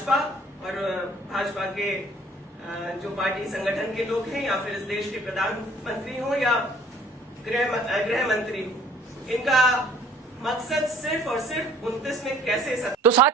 और भाजपा के जो पार्टी संगठन के लोग हैं, या फिर इस देश के प्रधानमंत्री हो या गृह मंत्री हो, इनका मकसद सिर्फ और सिर्फ 29 में कैसे तो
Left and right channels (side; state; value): both; normal; correlation 0.55